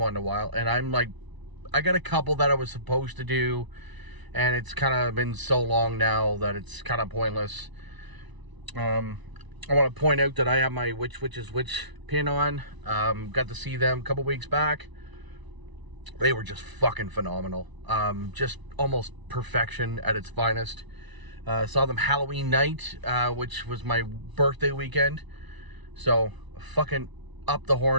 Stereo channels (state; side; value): late; left; 1.0 ms